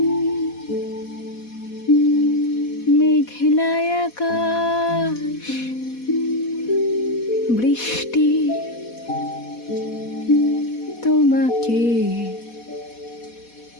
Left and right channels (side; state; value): right; late; 4.1 ms